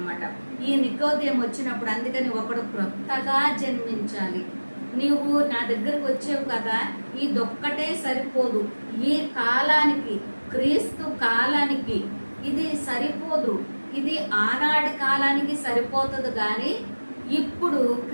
ఈ నికోదేము వచ్చినప్పుడు అందుకని ఒకడు క్రొత్తగా జన్మించాలి. నీవు నా దగ్గరకు వచ్చావు కదా, ఇదొక్కటే సరిపోదు. ఈ కాలానికి, క్రీస్తు కాలానికి ఇది సరిపోదు. ఇది ఆనాటి కాలానికి సరిపోతుంది కానీ ఇప్పుడు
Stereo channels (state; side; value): inverted; both; correlation -1.00